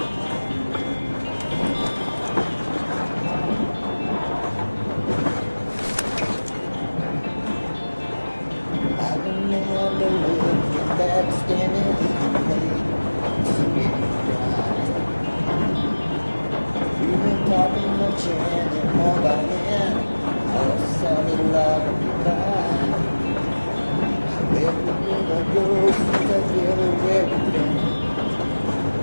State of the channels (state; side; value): inverted; both; correlation -1.00